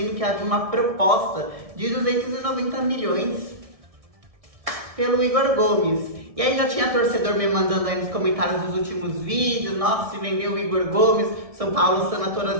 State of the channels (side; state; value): left; late; 1.6 ms